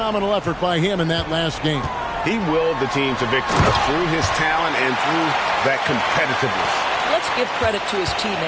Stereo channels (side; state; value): both; identical; correlation 1.00